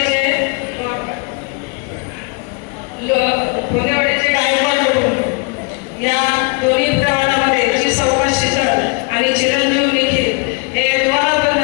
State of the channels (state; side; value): quieter; right; 33.4 dB